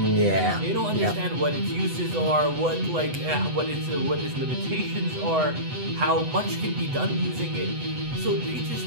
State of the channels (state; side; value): late; left; 8.0 ms